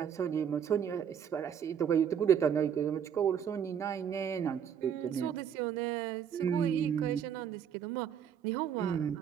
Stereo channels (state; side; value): quieter; left; 8.3 dB